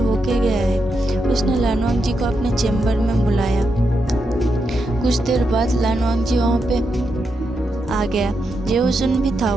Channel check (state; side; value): normal; both; correlation 0.84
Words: गया है। उसने लानवांग जी को अपने चैम्बर में बुलाया। कुछ देर बाद लानवांग जी वहाँ पे आ गया। जेओजुन भी था